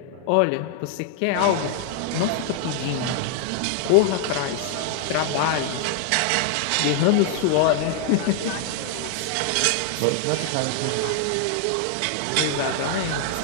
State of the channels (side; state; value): both; different; correlation 0.00